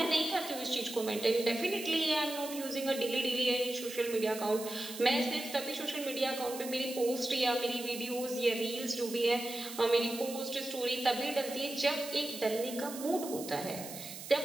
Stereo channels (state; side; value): noise; right; hiss, 11 dB below the sound